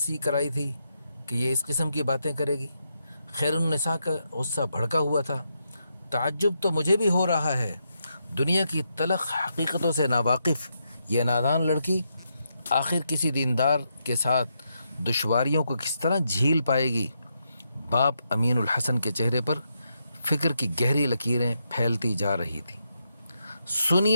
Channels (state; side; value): inverted; both; correlation -0.82